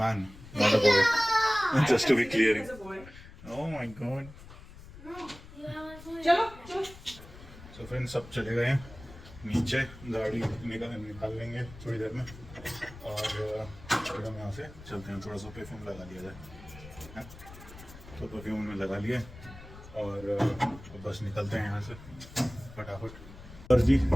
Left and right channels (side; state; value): left; noise; rumble, 17 dB below the sound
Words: not a boy, just to be clear. Oh my God. चलो सो फ्रेंड्स, सब चले गए हैं नीचे, गाड़ी निकाल लेंगे थोड़ी देर में। और फिर हम यहाँ से चलते हैं। थोड़ा सा परफ्यूम लगा लिया जाए, तो परफ्यूम में लगा लिए और बस निकलते हैं यहाँ से फटाफट। और जी,